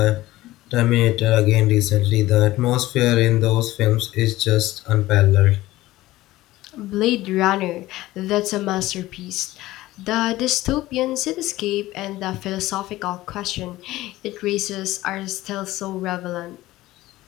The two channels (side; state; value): right; quieter; 17.0 dB